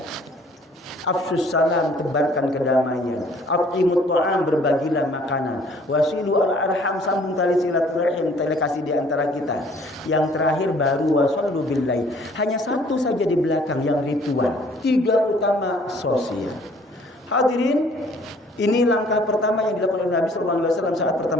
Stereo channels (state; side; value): normal; both; correlation 0.57